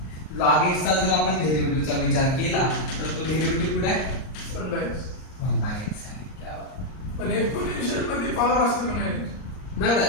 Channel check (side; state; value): right; late; 38 ms